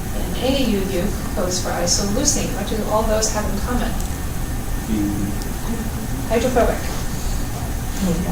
and AUU codes for isoleucine. What do all those have in common? Hydrophobic.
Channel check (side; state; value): both; identical; correlation 1.00